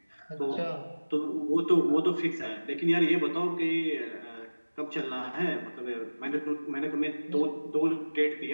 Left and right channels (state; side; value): inverted; both; correlation -1.00